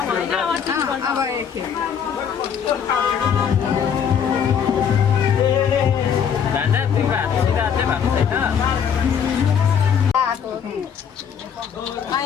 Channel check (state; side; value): quieter; right; 7.7 dB